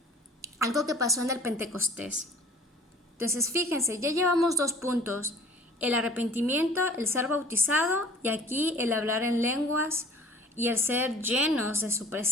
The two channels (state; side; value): normal; both; correlation 0.48